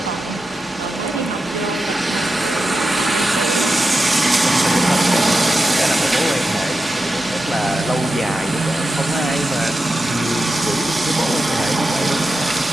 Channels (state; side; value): normal; both; correlation 0.90